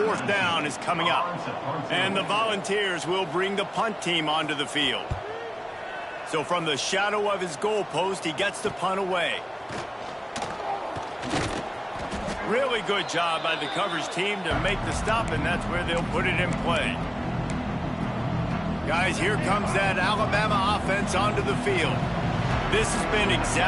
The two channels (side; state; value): both; identical; correlation 1.00